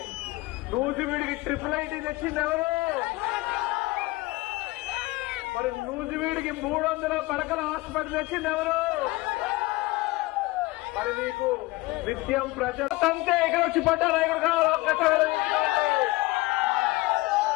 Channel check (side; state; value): right; quieter; 21.1 dB